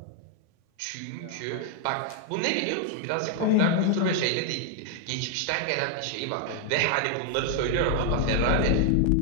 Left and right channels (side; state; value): both; different; correlation 0.00